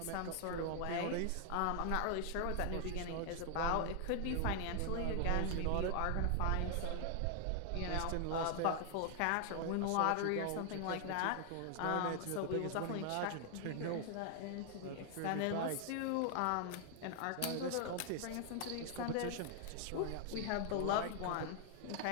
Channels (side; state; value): both; different; correlation 0.00